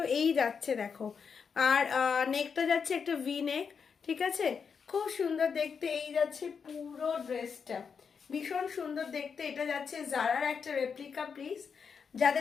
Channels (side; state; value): right; quieter; 6.1 dB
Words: এই যাচ্ছে দেখো। আর নেকটা যাচ্ছে একটা ভি নেক। ঠিক আছে, খুব সুন্দর দেখতে। এই যাচ্ছে পুরো ড্রেসটা, ভীষণ সুন্দর দেখতে। এটা যাচ্ছে জারার একটা রেপ্লিকা পিস।